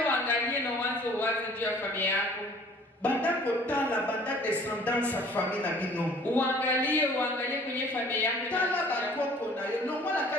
uangalie na uanze uwaze juu ya familia yako. Banda kotala, banda descendance sa famille na bino. Uangalie kwenye familia yako. Tala bakoko na yo. Non la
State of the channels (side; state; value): both; normal; correlation 0.53